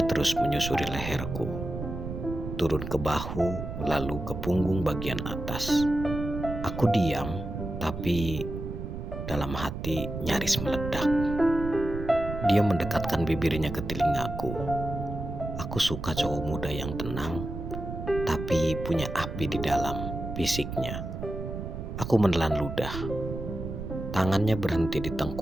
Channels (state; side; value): noise; right; rumble, 7 dB below the sound